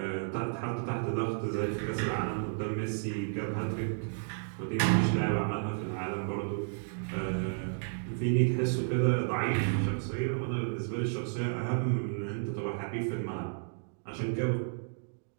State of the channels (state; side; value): silent; left; digital silence